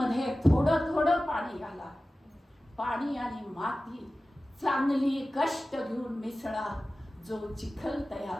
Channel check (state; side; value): normal; both; correlation 0.96